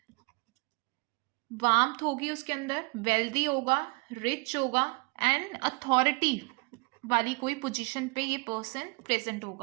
वार्मथ होगी उसके अंदर, वेल्दी होगा, रिच होगा, एंड अथॉरिटी वाली कोई पोजीशन पे ये पर्सन प्रेजेंट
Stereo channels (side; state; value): left; quieter; 29.1 dB